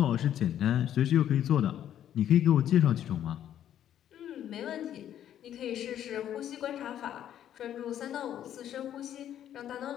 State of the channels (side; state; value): right; quieter; 10.7 dB